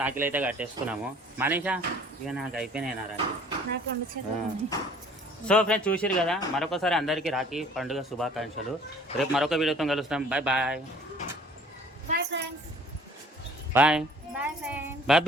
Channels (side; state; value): both; normal; correlation 0.53